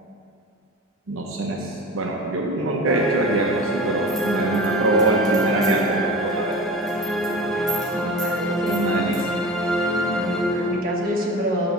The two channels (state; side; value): normal; both; correlation 0.33